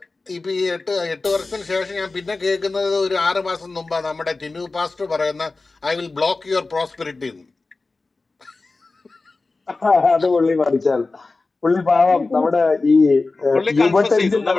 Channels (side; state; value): right; quieter; 3.6 dB